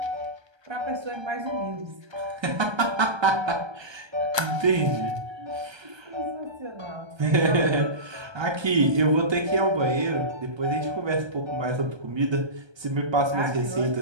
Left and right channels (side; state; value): left; late; 1.3 ms